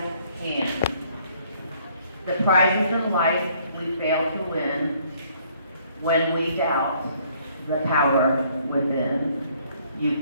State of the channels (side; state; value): both; inverted; correlation -0.63